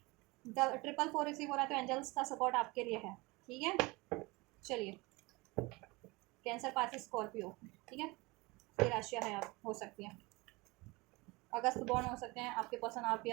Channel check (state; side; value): quieter; left; 24.2 dB